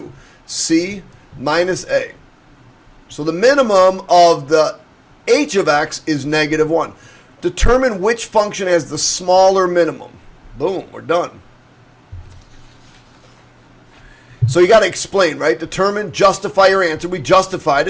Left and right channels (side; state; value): both; identical; correlation 1.00